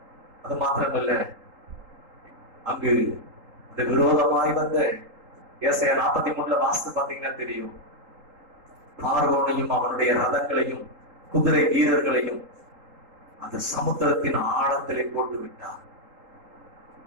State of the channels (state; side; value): late; left; 3.8 ms